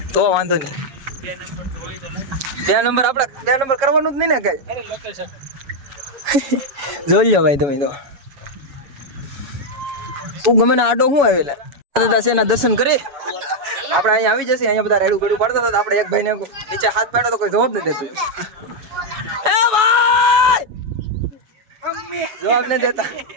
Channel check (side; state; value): left; late; 7.0 ms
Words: તો વાંધો નહીં. 2 નંબર આપણે 2 નંબર કરવાનું જ નહીં ને કઈ. જોઈ લો ભાઈ તમે તો. તું ગમે ને આડો શું આવેલા દાદા છે એના દર્શન કરી આપણે અહીંયા આવી જશે. અહીંયા બધા રેડું ગડું પાડતા હતા. આપણે એક ભાઈને નીચે હાથ પાડ્યો તો કોઈ જવાબ નથી દેતું. એ ભાઈ જવાબ નથી દેતા.